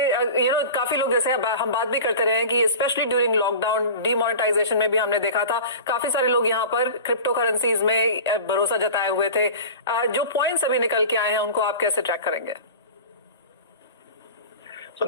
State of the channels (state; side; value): inverted; both; correlation -0.35